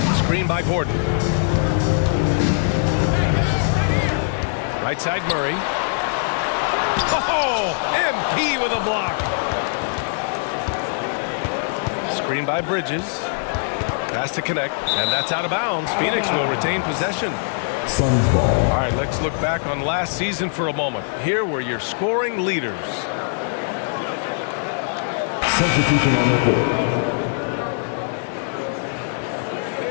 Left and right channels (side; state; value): right; silent; digital silence